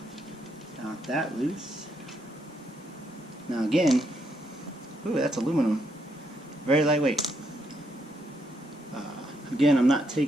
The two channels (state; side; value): normal; both; correlation 0.76